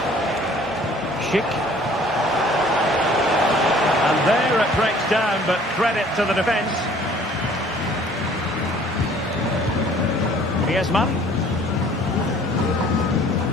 Schick. And there it breaks down, but credit to the defence. Griezmann.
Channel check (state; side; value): normal; both; correlation 0.54